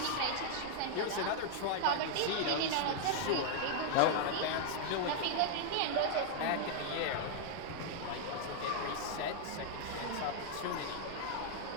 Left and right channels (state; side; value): different; both; correlation -0.01